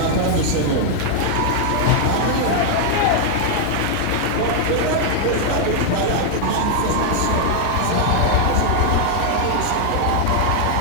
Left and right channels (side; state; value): both; different; correlation -0.01